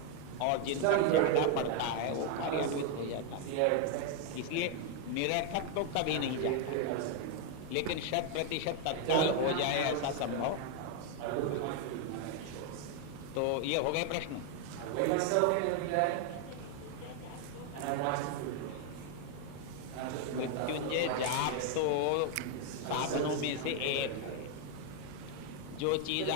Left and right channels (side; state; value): both; different; correlation 0.01